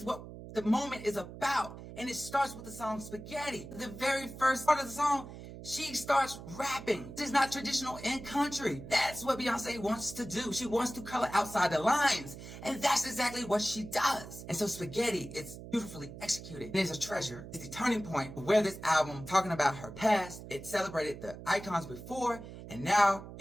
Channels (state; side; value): noise; right; hum, 13 dB below the sound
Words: what the moment is about. And it starts with the song Spaghetti. The very first part of the song, she starts rapping. This is not traditional in country. That's what Beyonce wants to do. She wants to color outside the lines. And that's exactly what she does. And so Spaghetti, it's beautifully executed. It is a treasure. It's the turning point of where this album, talking about her past, it celebrated the icons before, and now